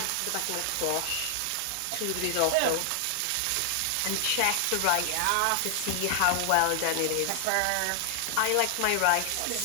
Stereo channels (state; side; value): different; both; correlation 0.00